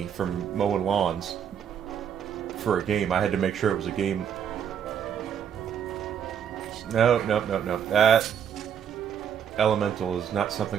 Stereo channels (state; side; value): quieter; left; 8.4 dB